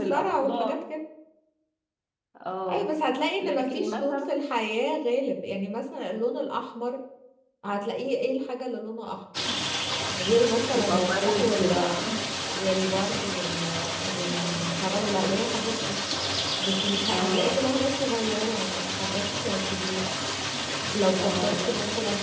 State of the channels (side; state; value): both; identical; correlation 1.00